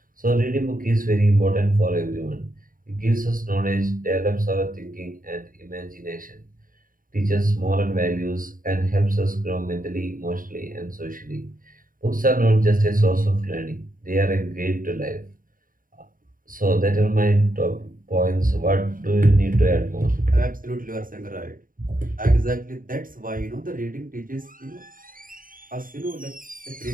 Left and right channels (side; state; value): left; late; 0.40 ms